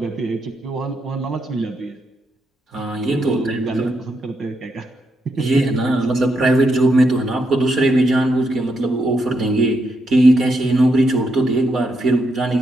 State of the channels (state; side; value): normal; both; correlation 0.80